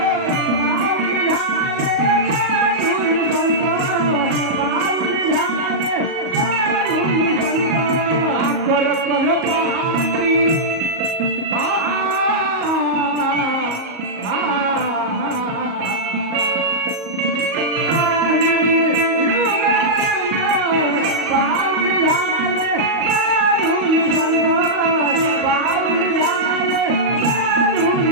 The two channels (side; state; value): left; late; 38 ms